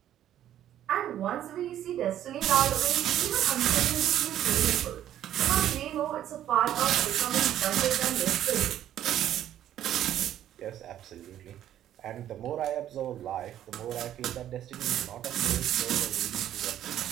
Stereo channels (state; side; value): quieter; left; 11.5 dB